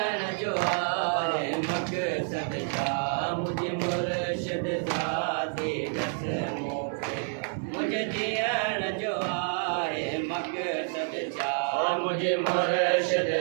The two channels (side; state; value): left; silent; 57 dB below the other